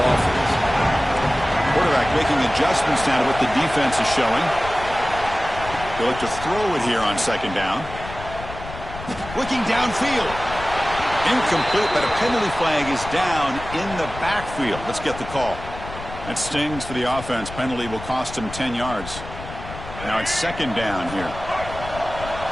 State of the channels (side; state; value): left; noise; rumble, 12 dB below the sound